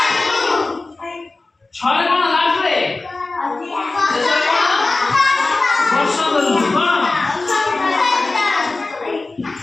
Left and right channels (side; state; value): right; quieter; 3.3 dB